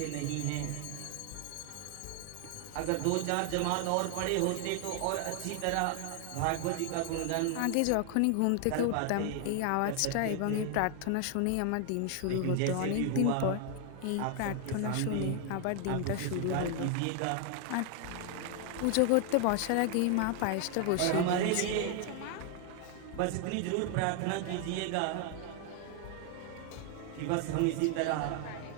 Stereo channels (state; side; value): different; both; correlation 0.00